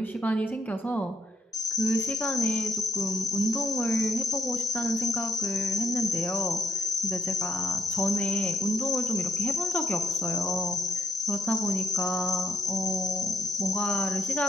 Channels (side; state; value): both; normal; correlation 0.72